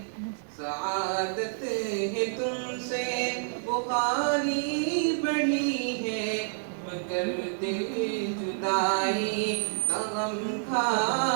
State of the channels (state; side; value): silent; left; digital silence